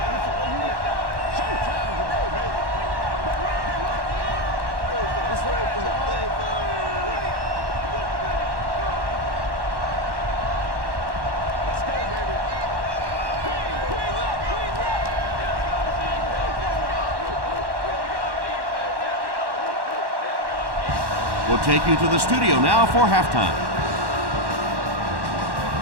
We'll take you to the studio now for halftime.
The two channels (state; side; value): late; left; 1.1 ms